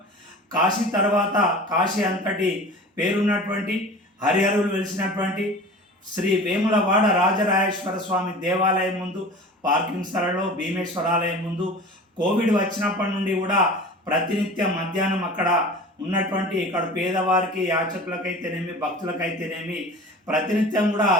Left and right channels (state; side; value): normal; both; correlation 0.38